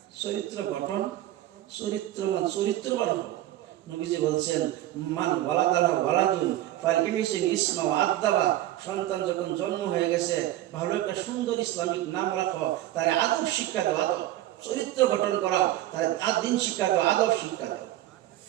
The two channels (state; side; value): quieter; left; 14.5 dB